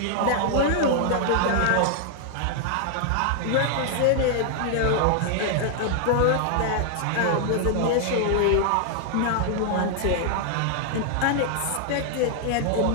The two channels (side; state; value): both; different; correlation 0.00